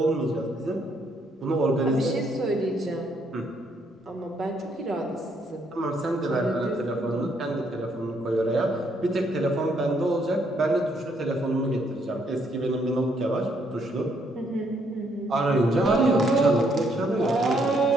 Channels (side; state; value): both; normal; correlation 0.71